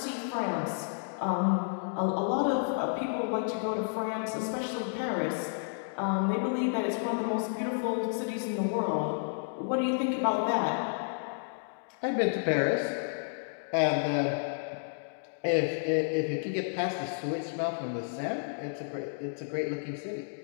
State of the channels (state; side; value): silent; right; digital silence